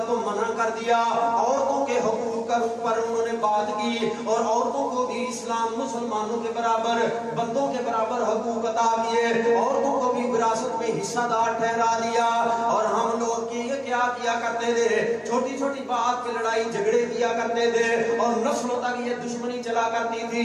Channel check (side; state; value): both; identical; correlation 1.00